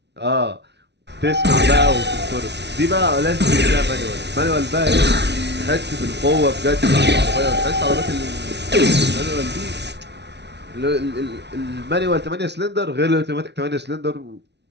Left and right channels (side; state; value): left; late; 0.50 ms